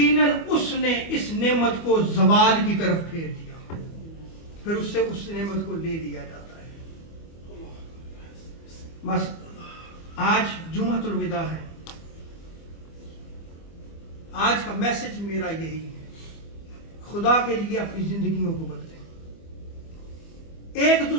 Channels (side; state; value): right; late; 25 ms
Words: اس نے اس نعمت کو زوال کی طرف پھیر دیا، پھر اس سے اس نعمت کو لے لیا جاتا ہے. آج جمعۃ الوداع ہے. آج کا میسج میرا یہی ہے، خدا کے لیے اپنی زندگیوں کو بدلیں، ایک